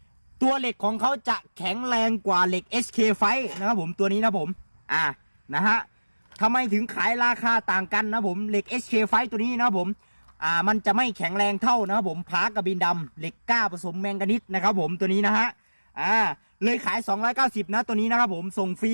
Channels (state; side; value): inverted; both; correlation -1.00